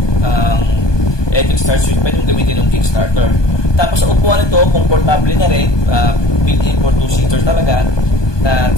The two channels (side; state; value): right; late; 1.2 ms